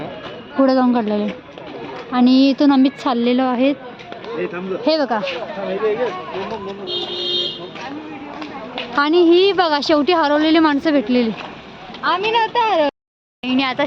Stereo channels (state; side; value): identical; both; correlation 1.00